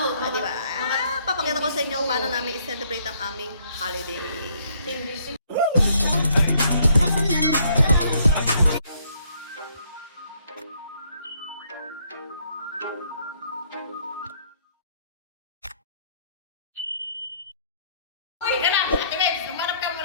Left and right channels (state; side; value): inverted; both; correlation -0.67